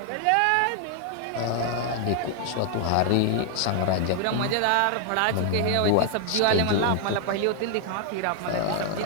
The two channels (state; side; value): different; both; correlation 0.00